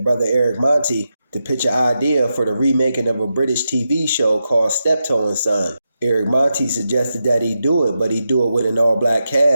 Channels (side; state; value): both; inverted; correlation -0.88